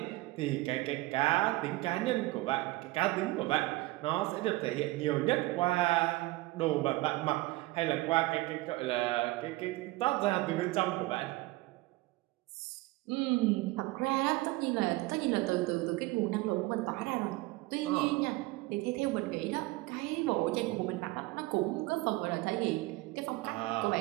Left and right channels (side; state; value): left; quieter; 20.2 dB